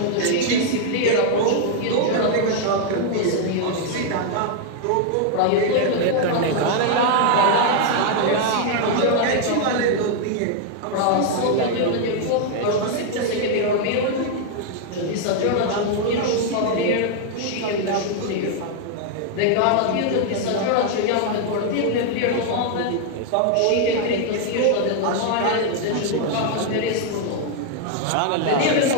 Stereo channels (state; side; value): different; both; correlation 0.00